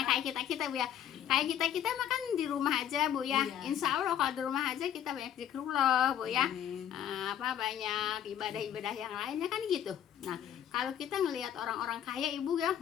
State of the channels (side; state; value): right; quieter; 10.1 dB